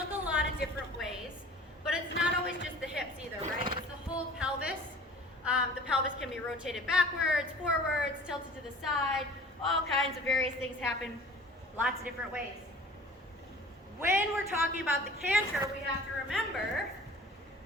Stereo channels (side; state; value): both; normal; correlation 0.45